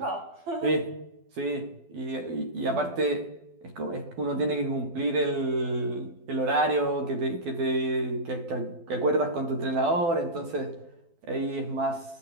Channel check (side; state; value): left; late; 12 ms